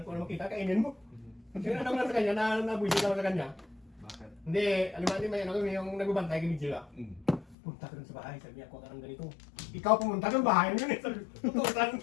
Kung ano makita, kainin mo. Kasi ano lang sa kanya, nabuisit ako sa kanya. bakit? Hindi, alam mo, may ano yung nagbabantay kami sila. Mm. Punta ka dun sa bahay, sabi niya, ako ka ng ganito. Ikaw pumunta ng bahay mo yun eh. Sabi, totoo, saan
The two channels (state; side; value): drops out; right; at 7.6 s